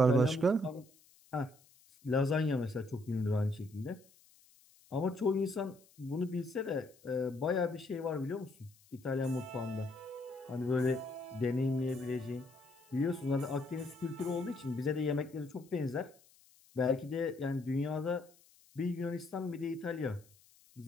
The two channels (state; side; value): noise; left; hiss, 28 dB below the sound